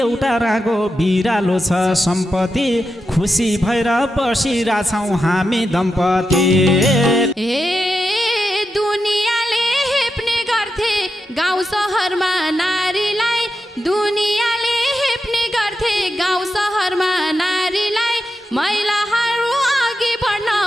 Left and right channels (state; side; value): normal; both; correlation 0.88